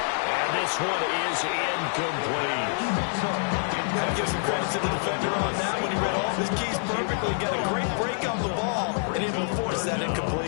And this one is incomplete. Got to give some credit to the defender on that when he read all of his keys perfectly. Got a great break on the ball and able to force that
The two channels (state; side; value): silent; right; 61 dB below the other